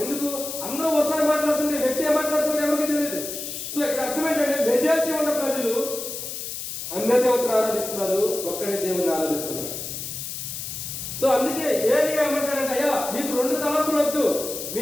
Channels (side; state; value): left; noise; hiss, 7 dB below the sound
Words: ఎందుకు? అందరూ ఒకసారి మాట్లాడుతుంటే వ్యక్తి ఏం మాట్లాడుతుంటే ఎవరికి తెలియదు. సో ఇక్కడ అర్థం ఏంటంటే మెజారిటీ ఉన్న ప్రజలు అన్య దేవతను ఆరాధిస్తున్నారు, ఒక్కడే దేవుని ఆరాధిస్తున్నారు. సో అందుకే ఏలియా ఏమంటాడంటే, అయ్యా మీకు 2 తలంపులు వద్దు,